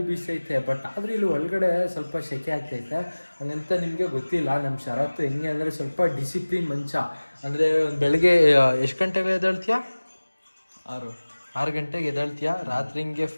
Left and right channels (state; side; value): inverted; both; correlation -1.00